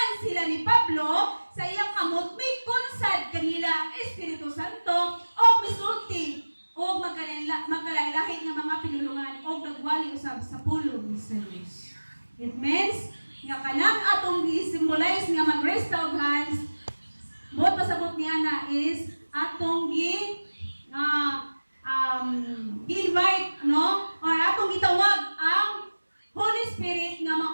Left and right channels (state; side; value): inverted; both; correlation -1.00